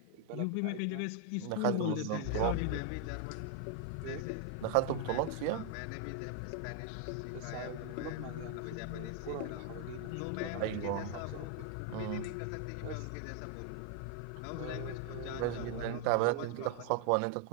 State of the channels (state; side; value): different; both; correlation 0.00